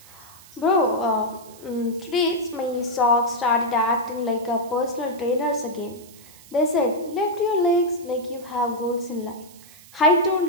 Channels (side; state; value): right; noise; hiss, 22 dB below the sound